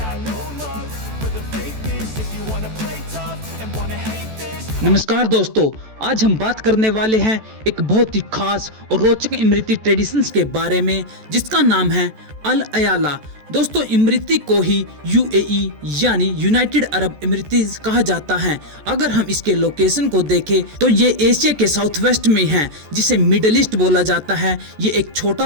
no love for the fakeness. If you wanna play tough and wanna hate this. नमस्कार दोस्तों, आज हम बात करने वाले हैं एक बहुत ही खास और रोचक इमराती ट्रेडिशंस के बारे में, जिसका नाम है अल अयाला। दोस्तों, इमराती को ही यूएई यानी यूनाइटेड अरब इमरातीज कहा जाता है। अगर हम इसके लोकेशन को देखें तो ये एशिया के साउथ वेस्ट में है, जिसे मिडिल ईस्ट बोला जाता है। ये एक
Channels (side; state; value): left; late; 14 ms